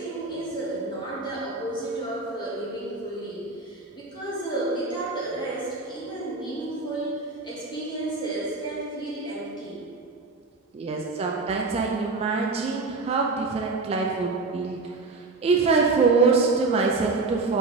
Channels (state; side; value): quieter; left; 3.7 dB